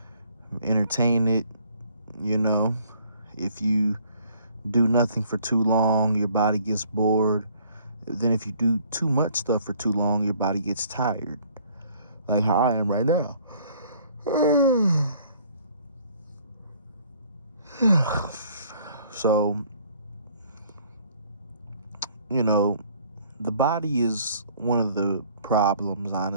entertain it. If you do nothing for too long, your body gets bored. Then if you do too much stuff for too long, your body gets tired, like how I am right now. So the body is one of the problems,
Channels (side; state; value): both; inverted; correlation -0.59